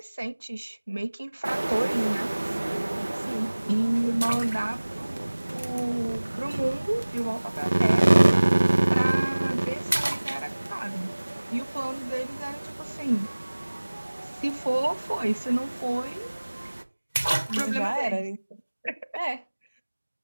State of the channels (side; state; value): both; inverted; correlation -1.00